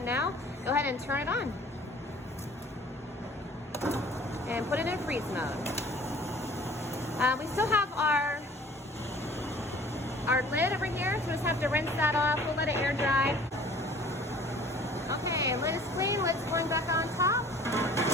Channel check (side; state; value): both; normal; correlation 0.50